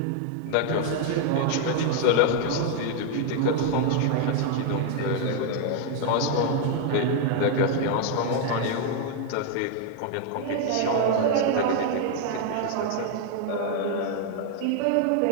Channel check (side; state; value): both; different; correlation 0.00